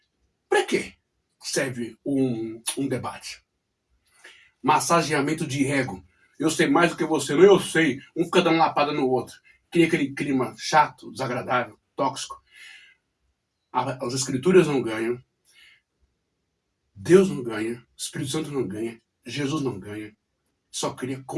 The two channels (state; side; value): identical; both; correlation 1.00